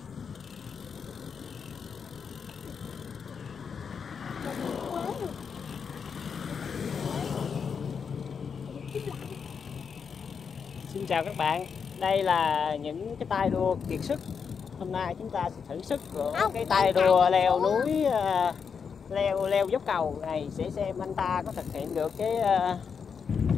Xin chào các bạn, đây là những cái tay đua kiệt sức. Hôm nay chúng ta sẽ thử sức của cái tay đua leo núi, leo dốc cầu này, sẽ xem anh ta có thực hiện được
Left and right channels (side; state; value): right; quieter; 6.3 dB